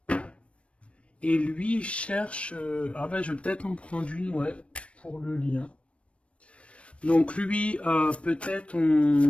Et lui, il cherche... ah ben, je vais peut-être en prendre une, ouais, pour le lien. Donc lui, peut-être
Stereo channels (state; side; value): late; right; 0.061 ms